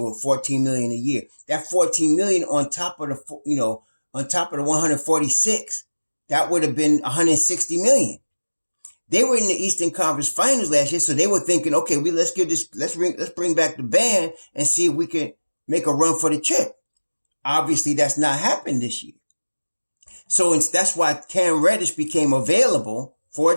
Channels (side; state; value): both; inverted; correlation -1.00